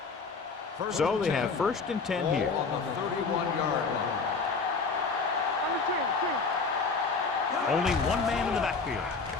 So they have first and 10 here. Ball on the 31-yard line. Only one man in the backfield.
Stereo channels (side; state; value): right; quieter; 4.6 dB